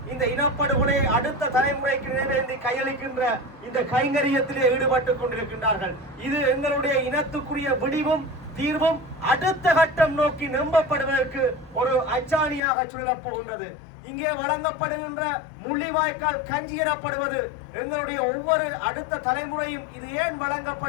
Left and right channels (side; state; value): right; drops out; at 12.6 s